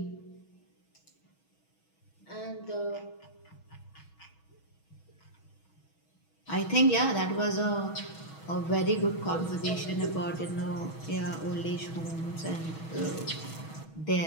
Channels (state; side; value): late; right; 6.3 ms